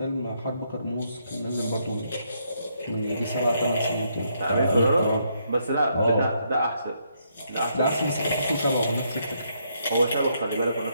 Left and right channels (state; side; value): inverted; both; correlation -0.75